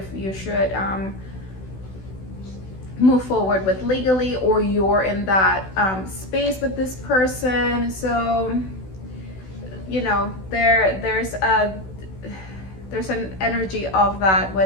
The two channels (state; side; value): late; right; 16 ms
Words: you should move forward with legally, or you're in that space with this person. So you know, there's an energy of that